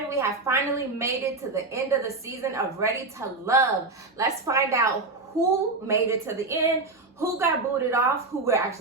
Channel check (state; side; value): quieter; left; 3.5 dB